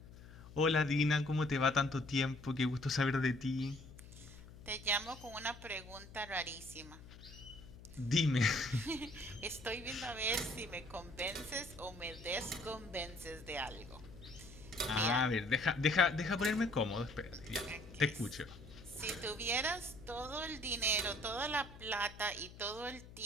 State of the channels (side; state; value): left; noise; hum, 17 dB below the sound